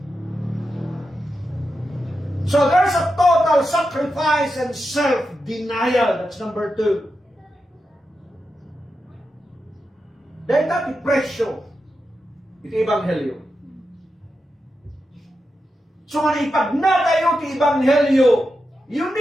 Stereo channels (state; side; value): normal; both; correlation 0.88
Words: So there's a total sacrifice and self-denial. That's number 2. Dahil natin presyo, ito Ebanghelyo. So nga ipag na tayo iti Ebanghelyo, you